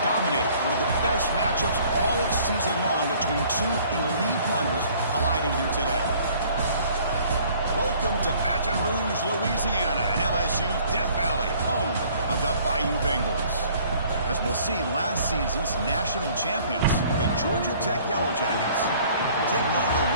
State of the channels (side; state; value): both; inverted; correlation -0.56